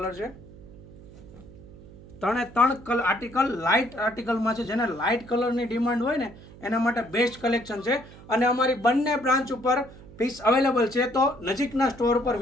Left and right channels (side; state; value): right; noise; hum, 19 dB below the sound